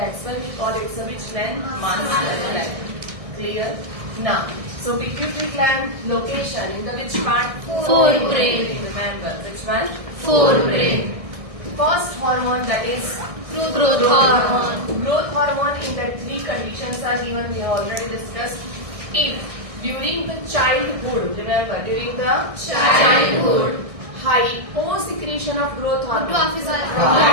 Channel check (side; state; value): left; late; 1.6 ms